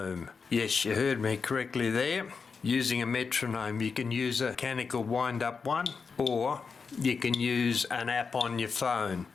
Yes, you heard me correctly there. Using a metronome, you can use a mechanical wind-up one, or you can use an app on your phone.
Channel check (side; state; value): right; quieter; 5.2 dB